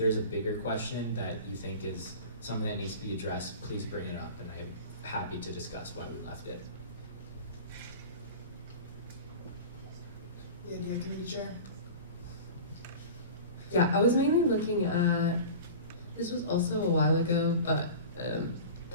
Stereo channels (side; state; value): both; inverted; correlation -0.36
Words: a bigger question that you think is something that needs to be addressed, please bring it up, and I'm happy to discuss why we left it. The Idea Committee Chair. Yeah, I was mainly looking at, this was also a while ago, but